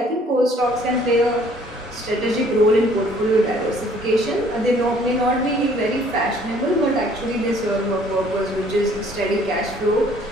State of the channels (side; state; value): both; normal; correlation 0.58